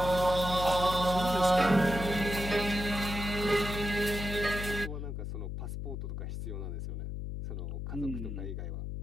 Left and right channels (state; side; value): noise; left; hum, 5 dB below the sound